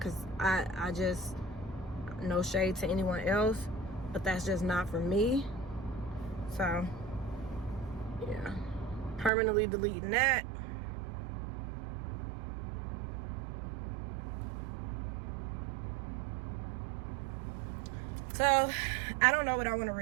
I just, no shade to anyone else, but that's just not for me. So, yeah. Permanently deleting that. So, I don't know what I want to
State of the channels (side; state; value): left; drops out; at 9.3 s